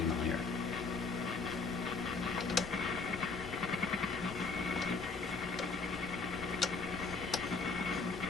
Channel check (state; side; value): quieter; right; 4.2 dB